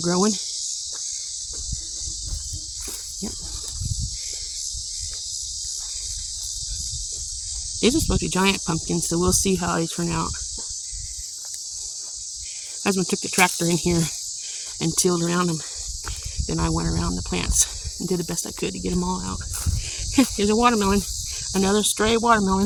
growing. Yep. These are supposed to be giant pumpkins, so we'll see how they turn out. Husband took the tractor in here and tilled around them. Then I went around the plants and did the best I could to get them all out. Here's a watermelon, another stray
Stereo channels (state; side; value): identical; both; correlation 1.00